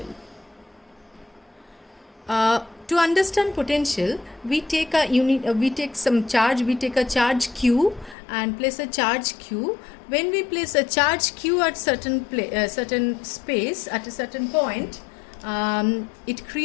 To understand potential, we take some charge. We take a charge Q and place a charge Q. When we place a charge Q at certain space at a certain point, it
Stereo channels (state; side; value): drops out; right; at 8.2 s